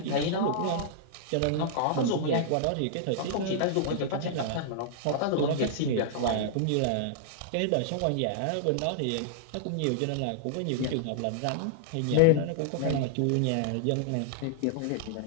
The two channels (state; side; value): different; both; correlation -0.01